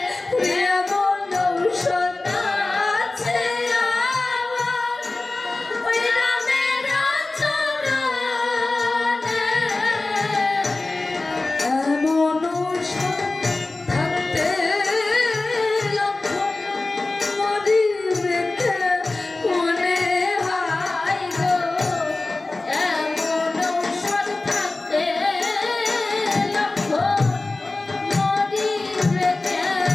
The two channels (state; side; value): quieter; right; 3.2 dB